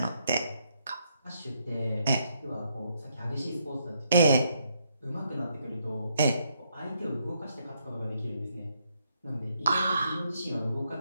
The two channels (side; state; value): both; inverted; correlation -0.75